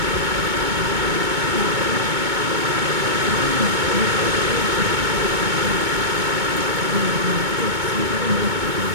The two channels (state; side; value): late; left; 2.2 ms